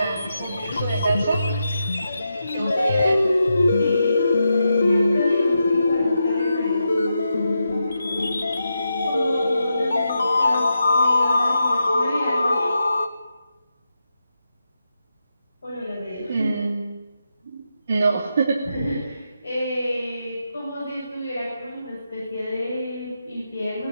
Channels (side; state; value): both; inverted; correlation -0.86